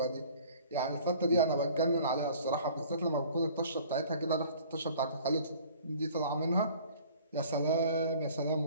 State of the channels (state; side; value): inverted; both; correlation -0.50